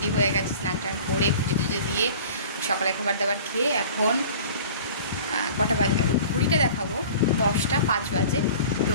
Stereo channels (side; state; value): both; inverted; correlation -0.42